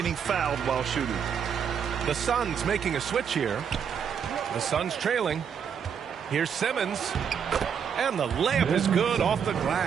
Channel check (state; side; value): quieter; left; 7.5 dB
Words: fouled while shooting. The Suns making a switch here. The Suns trailing. Here's Simmons. And the layup is good off the